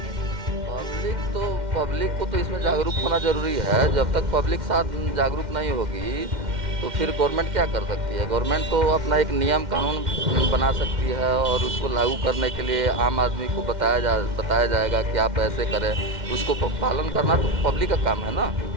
है? पब्लिक को तो इसमें जागरूक होना जरूरी है। जब तक पब्लिक साथ जागरूक नहीं होगी तो फिर गवर्नमेंट क्या कर सकती है? गवर्नमेंट तो अपना एक नियम कानून बना सकती है और उसको लागू करने के लिए आम आदमी को बताया जाएगा कि आप ऐसे करें, उसको पालन करना तो पब्लिक का काम है ना।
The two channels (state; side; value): late; left; 2.1 ms